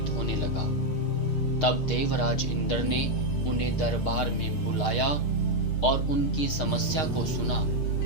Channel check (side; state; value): right; late; 6.5 ms